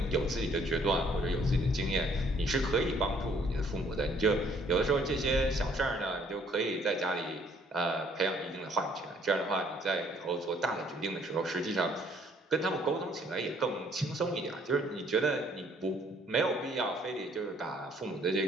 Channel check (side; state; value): both; normal; correlation 0.63